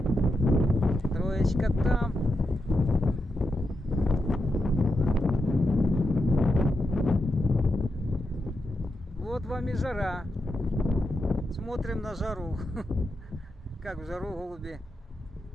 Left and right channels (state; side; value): normal; both; correlation 0.86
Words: Троечка там. Вот вам и жара. Смотрим на жару. Как в жару голуби